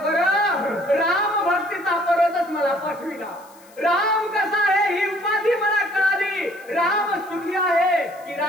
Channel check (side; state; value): left; noise; hiss, 27 dB below the sound